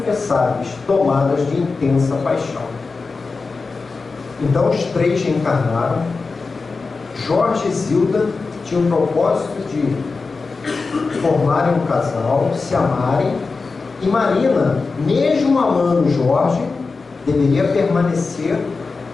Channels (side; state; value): right; quieter; 4.2 dB